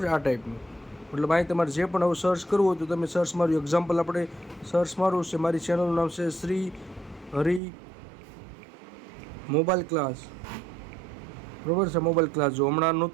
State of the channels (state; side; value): drops out; left; at 7.6 s